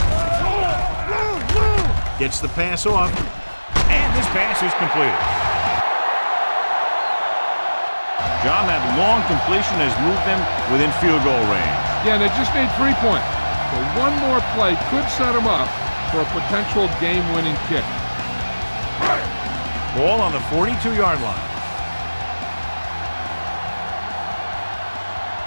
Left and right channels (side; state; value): both; inverted; correlation -1.00